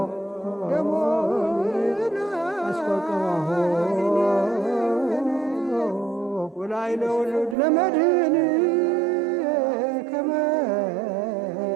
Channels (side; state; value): left; drops out; at 7.6 s